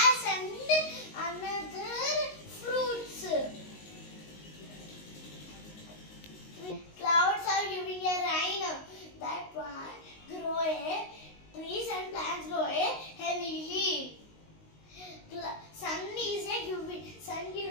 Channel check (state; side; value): late; right; 19 ms